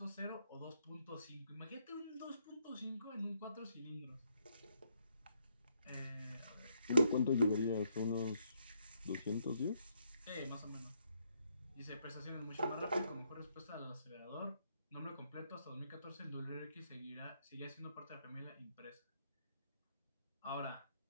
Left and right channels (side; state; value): both; inverted; correlation -0.74